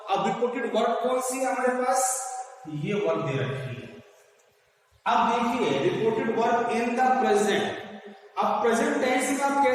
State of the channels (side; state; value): both; identical; correlation 1.00